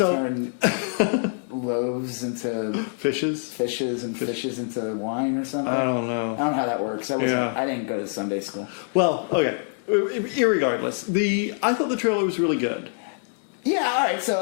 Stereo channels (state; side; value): silent; right; digital silence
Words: loaves into fishes and fishes into wine or something? I don't know. I don't know how that works. I didn't go to Sunday school. Well, okay. Irregardless, I thought the trailer was really good. Yeah. All right.